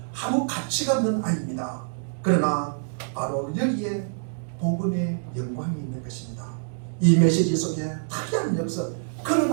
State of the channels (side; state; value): left; silent; digital silence